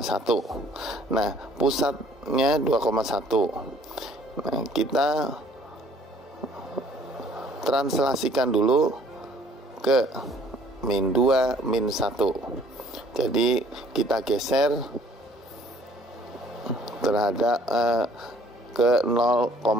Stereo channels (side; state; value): both; normal; correlation 0.58